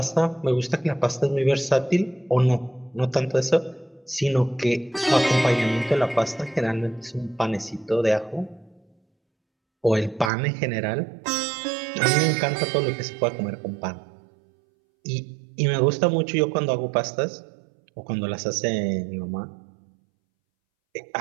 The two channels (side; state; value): left; drops out; at 10.3 s